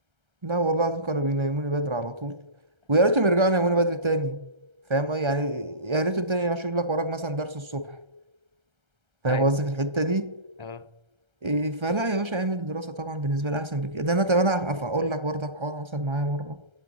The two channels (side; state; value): left; late; 1.3 ms